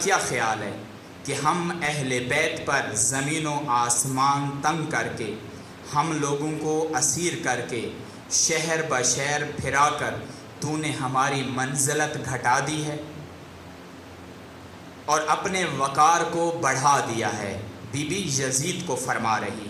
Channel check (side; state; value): both; identical; correlation 1.00